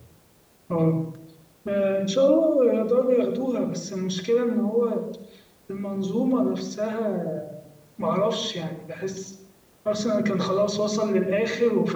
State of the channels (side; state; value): both; identical; correlation 1.00